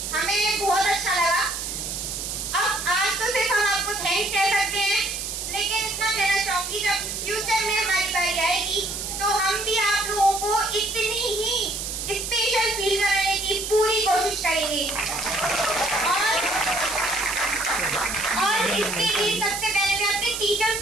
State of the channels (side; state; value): right; noise; hiss, 5 dB below the sound